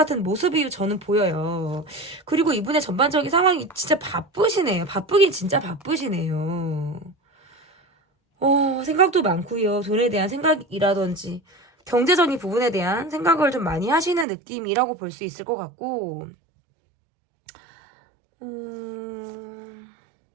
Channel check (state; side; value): drops out; left; at 14.2 s